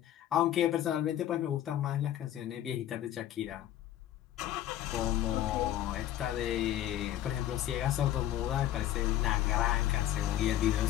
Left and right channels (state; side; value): quieter; right; 12.5 dB